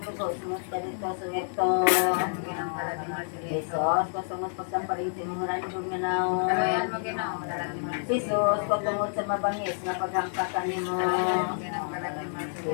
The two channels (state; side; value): silent; right; digital silence